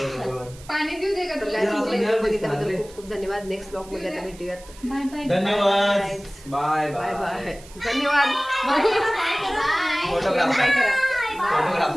पाणी देऊ दे का तर तुला? guys, तुमच्या video बघितल्याबद्दल खूप खूप धन्यवाद. नेक्स्ट ब्लॉग मध्ये आता भेटूयात. Bye bye. धन्यवाद. Bye bye bye. धन्यवाद. बाय करा. फोटोग्राफर. बाय करा.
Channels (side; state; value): right; noise; hiss, 21 dB below the sound